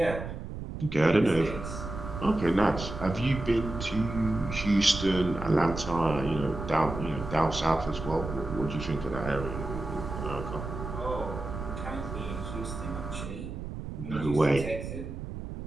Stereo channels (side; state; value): right; noise; rumble, 8 dB below the sound